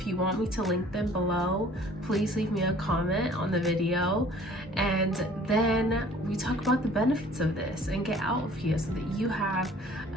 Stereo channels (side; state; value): both; normal; correlation 0.52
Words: you want me to link them below, please leave me a comment on the video, and then we talk about the benefits of this and get out of here so that you have